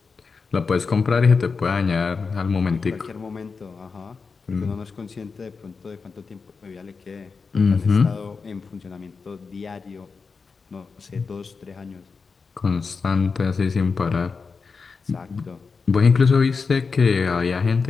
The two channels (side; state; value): right; quieter; 4.9 dB